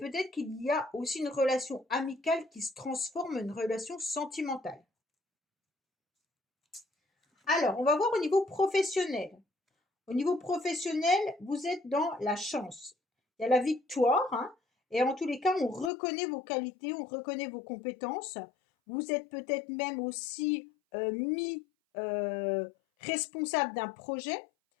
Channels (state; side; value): drops out; right; at 15.9 s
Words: qu'il y a aussi une relation amicale qui se transforme en une relation sentimentale. Alors, on va voir au niveau professionnel. Au niveau professionnel, vous êtes dans la chance. Il y a la victoire, hein, et en tous les cas, on reconnaît vos qualités, on reconnaît vos compétences. Vous êtes peut-être même aussi mis responsable d'un projet.